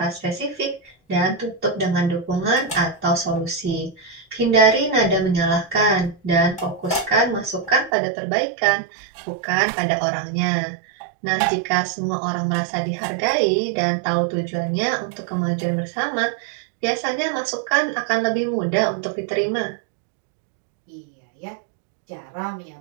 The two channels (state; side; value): drops out; left; at 7.9 s